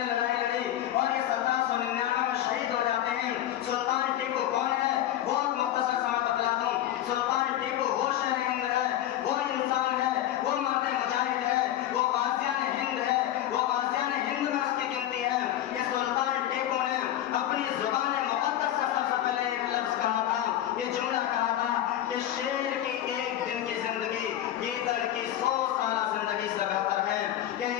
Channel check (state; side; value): quieter; right; 12.4 dB